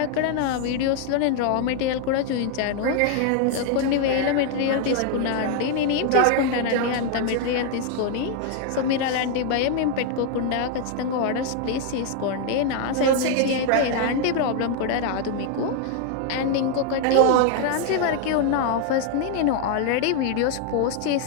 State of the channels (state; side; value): different; both; correlation 0.00